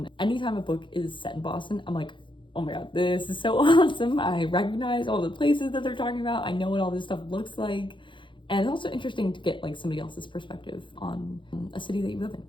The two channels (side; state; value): right; late; 0.24 ms